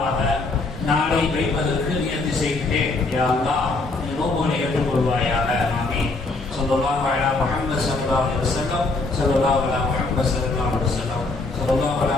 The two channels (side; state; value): right; quieter; 3.4 dB